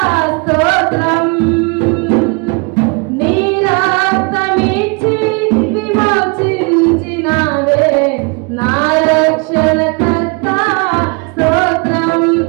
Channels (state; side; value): quieter; left; 32.2 dB